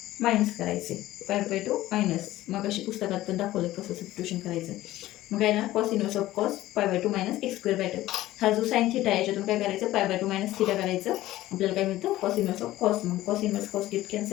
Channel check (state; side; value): quieter; right; 15.7 dB